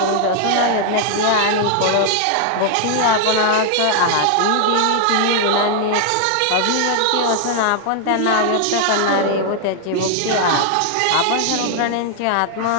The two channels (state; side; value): different; both; correlation 0.00